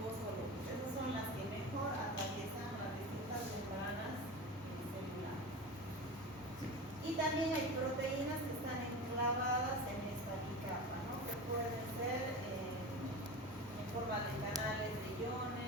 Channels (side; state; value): both; normal; correlation 0.28